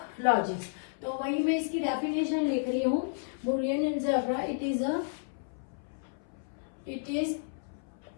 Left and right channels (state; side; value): silent; right; 57 dB below the other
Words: logic. तो वही मैं इसकी डेफिनेशन लिख रही हूँ। Boolean algebra it is